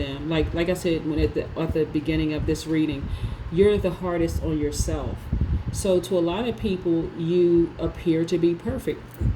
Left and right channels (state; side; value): identical; both; correlation 1.00